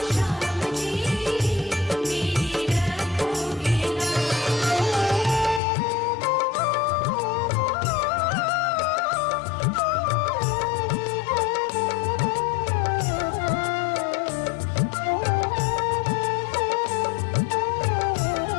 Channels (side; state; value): right; drops out; at 5.6 s